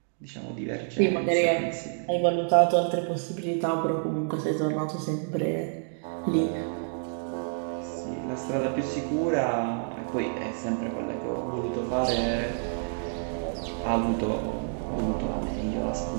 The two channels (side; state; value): left; silent; digital silence